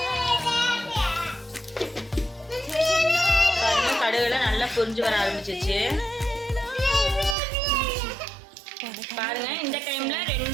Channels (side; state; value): left; drops out; at 7.4 s